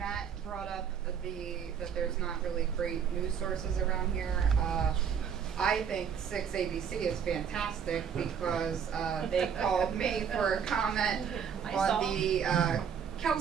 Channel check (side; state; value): left; quieter; 7.5 dB